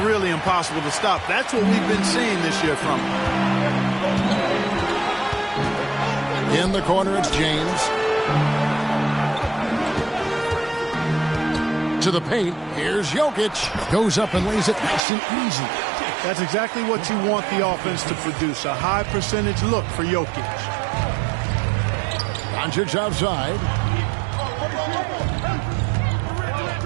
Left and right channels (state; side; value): drops out; left; at 15.0 s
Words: really impossible to stop. That's what we've been seeing this year from him. In the corner, it's James. To the paint, here's Jokic. Goes up and lays it nice and easy. That's exactly what you want the offense to produce, a high percentage look for Jokic. Doncic outside.